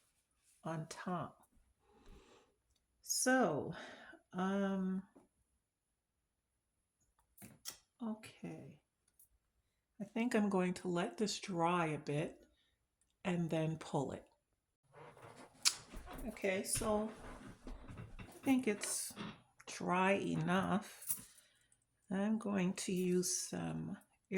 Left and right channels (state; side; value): identical; both; correlation 1.00